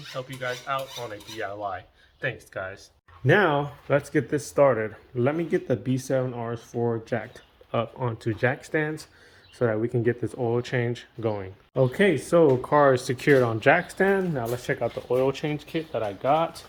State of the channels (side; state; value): both; identical; correlation 1.00